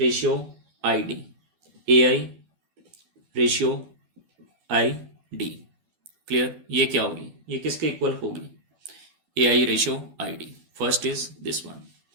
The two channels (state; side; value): late; left; 12 ms